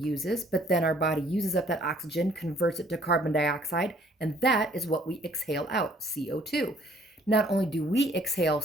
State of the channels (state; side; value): normal; both; correlation 0.60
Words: But then our body uses up that oxygen, converts it to carbon dioxide, and that is what we exhale out, CO2. Not only do we exhale